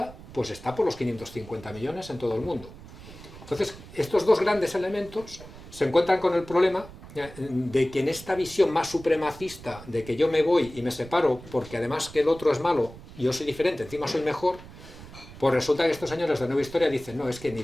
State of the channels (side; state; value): right; noise; rumble, 17 dB below the sound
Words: pues está por los 550 millones en todo el mundo. Entonces, estos dos grandes elementos se encuentran con el problema de que en esta visión más supremacista, de que yo me voy y me separo porque además que el otro es malo y yo soy diferente, encima soy mejor, pues resulta que estos señores de Nueva Historia dicen, no, es que